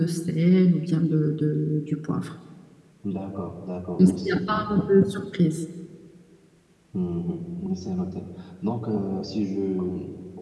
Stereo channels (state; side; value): identical; both; correlation 1.00